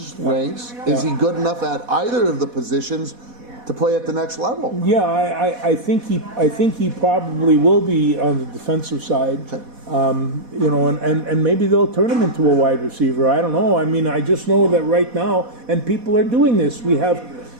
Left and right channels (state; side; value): late; left; 4.1 ms